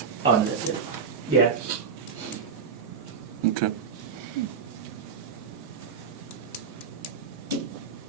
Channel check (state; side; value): quieter; left; 6.1 dB